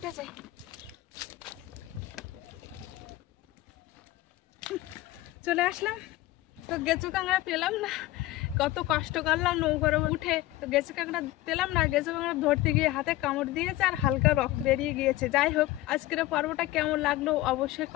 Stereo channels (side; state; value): right; quieter; 16.7 dB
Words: যাই। চলে আসলাম, তো গেঁচো কাঁকড়া পেলাম না। কত কষ্ট করলাম নৌকার উঠে, তো গেঁচো কাঁকড়া পেলাম না। গেঁচো কাঁকড়া ধরতে গিয়ে হাতে কামড় দিয়েছে আর হালকা রক্ত বেরিয়ে গিয়েছে। যাই হোক, আজকের পর্বটা কেমন লাগলো অবশ্যই